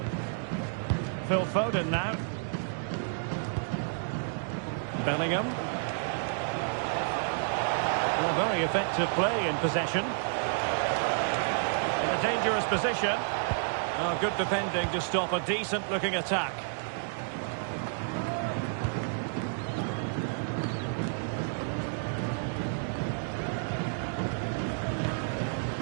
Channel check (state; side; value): silent; left; digital silence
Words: Phil Foden now. Bellingham. Well, very effective play in possession. In a dangerous position. Oh, good defending to stop a decent-looking attack.